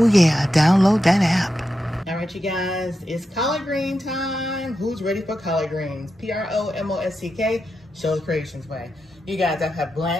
yeah. Download that app. All right, you guys, it's collard green time. Who's ready for collard greens? PROMOSTK, Sheila's Creations Way. You guys, I have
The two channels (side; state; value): both; normal; correlation 0.88